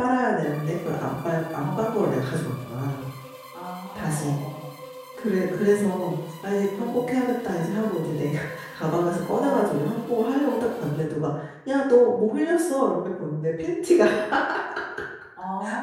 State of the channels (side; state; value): both; identical; correlation 1.00